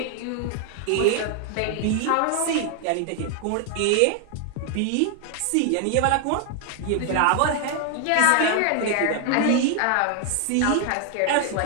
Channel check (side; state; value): both; different; correlation 0.00